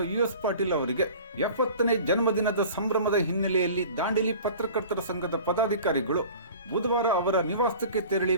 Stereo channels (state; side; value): inverted; both; correlation -0.42